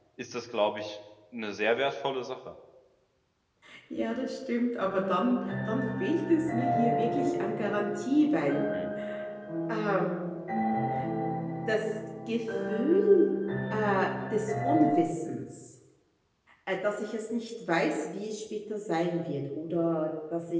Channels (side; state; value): both; identical; correlation 1.00